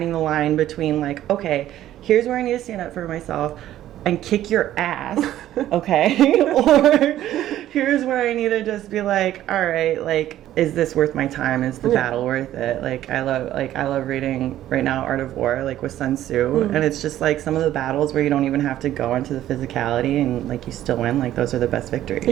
the line between like, okay, here's where I need to stand up for myself and kick your ass, okay? Or here's where I need to just be like, all right, like, is this worth my time? Is the battle worth it? Like I love reading right now Art of War, like with Sun Tzu, and it's just like some of the battles where you don't even have to go into the physicality and like you still win, like those are the best victories.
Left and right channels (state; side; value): quieter; left; 12.9 dB